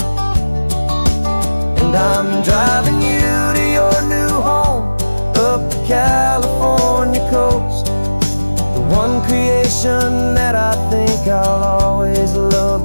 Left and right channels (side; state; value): both; inverted; correlation -1.00